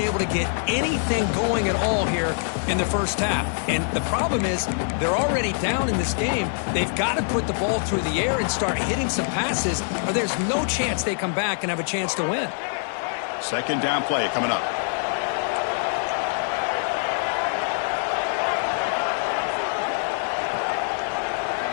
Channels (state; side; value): silent; right; digital silence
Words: to get anything going at all here in the first half. And the problem is they're already down in this game. They've got to put the ball through the air and start hitting some passes, or there's no chance they come back and have a chance to win. Second down play coming up.